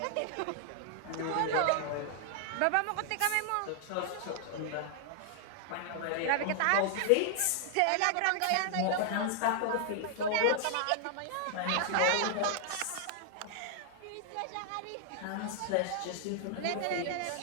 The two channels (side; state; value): both; different; correlation 0.00